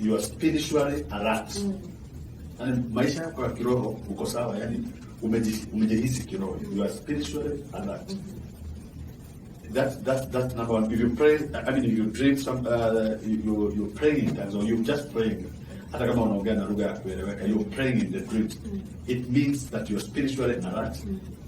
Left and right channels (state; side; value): identical; both; correlation 1.00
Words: are spiritually alert. And maisha yako ya kiroho uko sawa, yani umejihisi kiroho, you are spiritually alert. That's number one. If you pray, if you dream you're praying in tongues or you're just praying, hata kama unaongea na lugha ya kueleweka, you're praying in the dream. It means that you're spiritually alert.